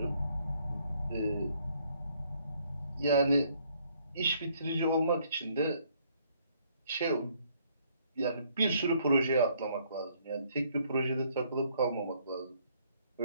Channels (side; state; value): both; inverted; correlation -0.67